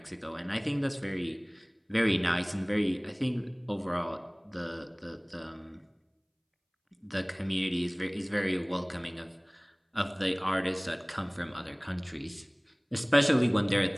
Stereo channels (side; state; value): both; identical; correlation 1.00